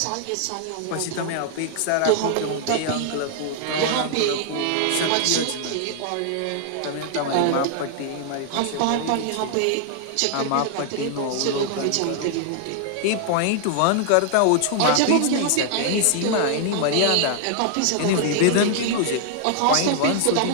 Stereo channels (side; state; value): both; different; correlation 0.00